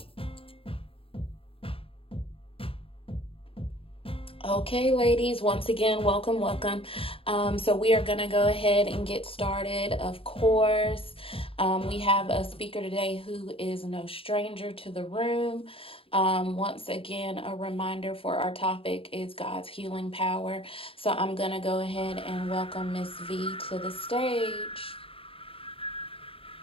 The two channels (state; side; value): late; right; 0.27 ms